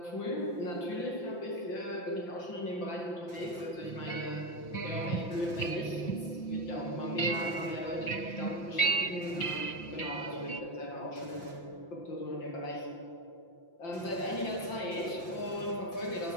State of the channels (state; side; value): late; right; 5.8 ms